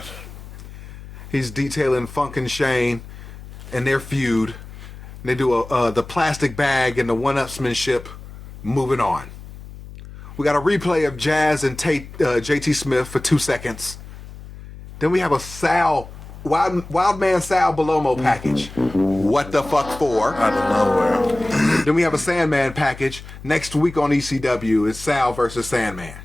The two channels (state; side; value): noise; left; hum, 15 dB below the sound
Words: He's detailing Funk and Shane and their feud. They do the plastic bag and the one-upsmanship. Moving on. We got a replay of Jazz and JT Smith for 2 seconds. Then we have a Wild Man Sal Belomo package. What the fuck for? Out of nowhere. Then we have a Sandman package. Next week on ECW is Sal versus Sandman.